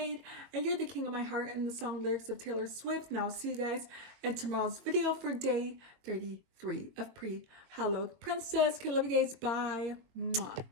And you're the king of my heart in the song lyrics of Taylor Swift. And I'll see you guys in tomorrow's video for day 33 of Pre-Hallowed Princess. Okay, love you guys. Bye. Mwah.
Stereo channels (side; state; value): left; late; 22 ms